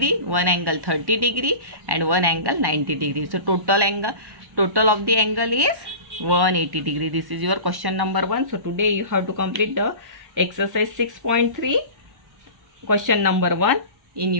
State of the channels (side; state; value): left; late; 1.1 ms